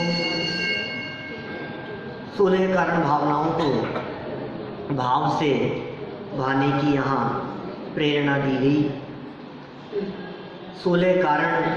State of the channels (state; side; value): identical; both; correlation 1.00